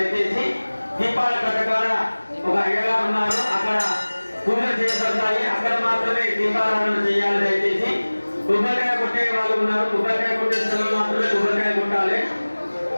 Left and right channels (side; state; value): both; inverted; correlation -1.00